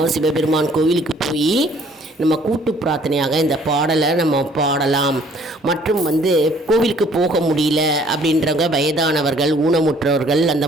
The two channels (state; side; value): normal; both; correlation 0.59